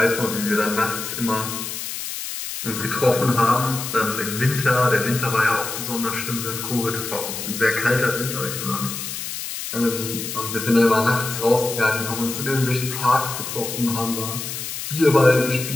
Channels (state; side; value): noise; left; hiss, 6 dB below the sound